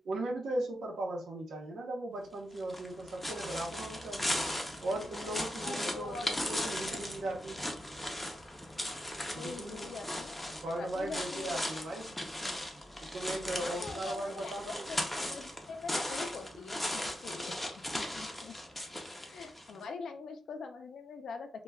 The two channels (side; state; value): both; normal; correlation 0.86